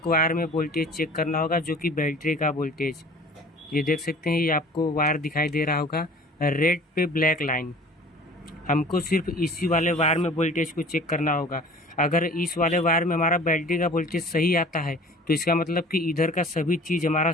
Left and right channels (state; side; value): normal; both; correlation 0.46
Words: वायर में वोल्टेज चेक करना होगा, जो कि बैटरी का वोल्टेज। ये देख सकते हैं ये आपको वायर दिखाई दे रहा होगा, रेड पे ब्लैक लाइन। हमको सिर्फ इसी वाले वायर में वोल्टेज को चेक करना होगा। अगर इस वाले वायर में हमारा बैटरी का वोल्टेज सही आता है तो इसका मतलब कि इधर का सभी चीज़ हमारा